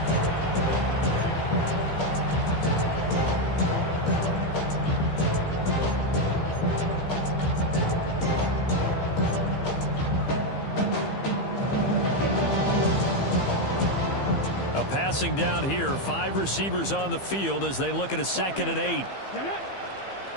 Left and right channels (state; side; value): late; right; 15 ms